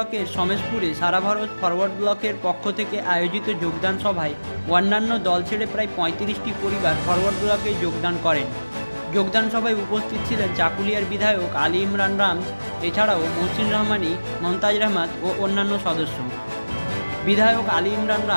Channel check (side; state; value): both; inverted; correlation -1.00